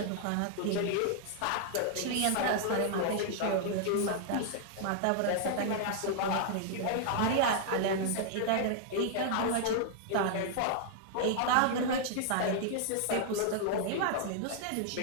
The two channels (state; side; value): different; both; correlation 0.00